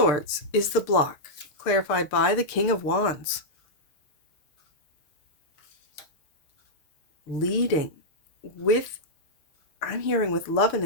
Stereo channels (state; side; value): late; right; 6.6 ms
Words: is the block, clarified by the King of Wands. Leading with, I'm hearing with love and